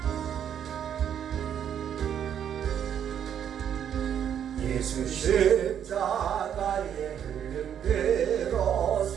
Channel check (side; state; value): left; quieter; 9.1 dB